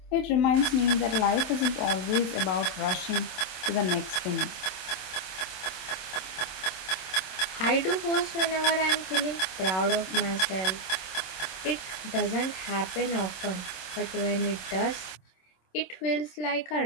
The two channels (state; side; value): late; right; 25 ms